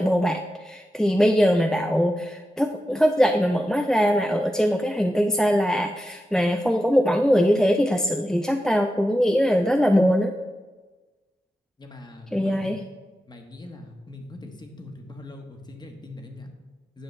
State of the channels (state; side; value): normal; both; correlation 0.91